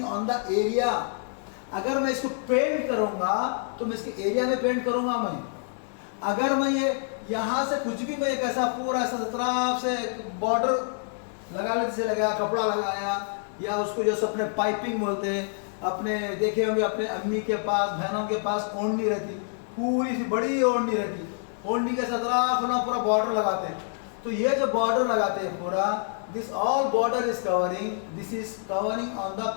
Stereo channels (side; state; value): right; silent; digital silence